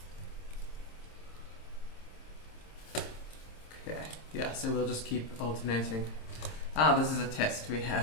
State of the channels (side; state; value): right; late; 26 ms